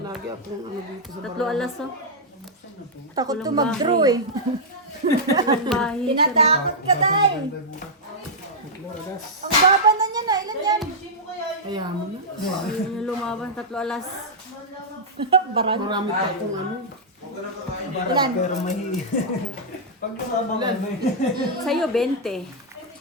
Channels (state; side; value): normal; both; correlation -0.08